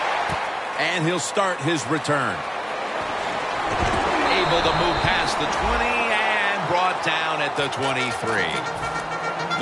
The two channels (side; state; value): both; identical; correlation 1.00